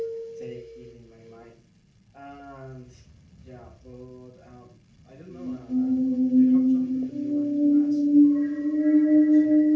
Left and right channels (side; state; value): both; identical; correlation 1.00